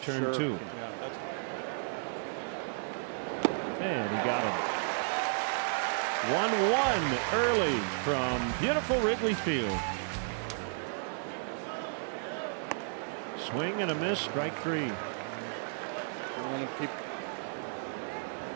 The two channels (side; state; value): left; silent; 56 dB below the other